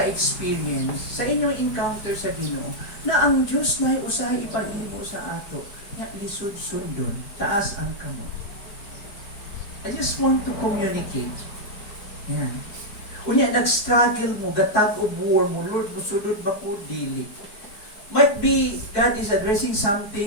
sa inyong encounter sa Ginoo na ang Diyos na usahay ipag-imo sa ato, na lisod sundon, taas ang kamot. I just want to communicate. Yan. Unya, nag-struggle mo, gatag o war mo, Lord, musulod ba ko, dili. Might be God is addressing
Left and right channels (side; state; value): right; late; 4.7 ms